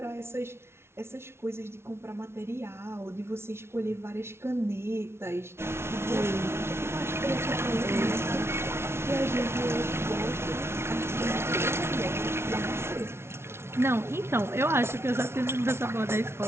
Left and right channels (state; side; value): late; left; 0.12 ms